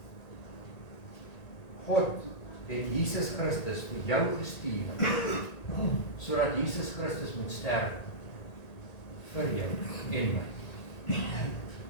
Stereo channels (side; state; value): right; late; 1.8 ms